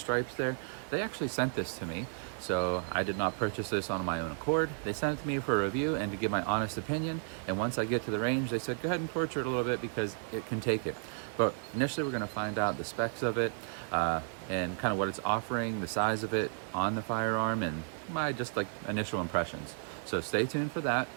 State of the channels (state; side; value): silent; left; 56 dB below the other